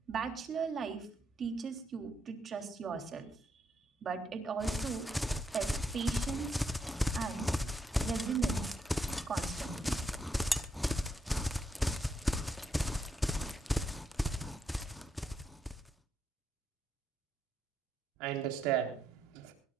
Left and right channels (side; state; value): both; normal; correlation 0.79